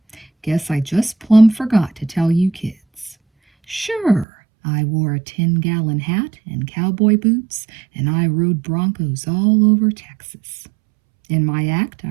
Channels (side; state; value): left; drops out; at 4.2 s